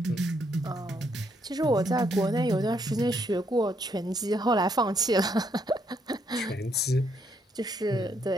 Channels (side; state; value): both; normal; correlation 0.73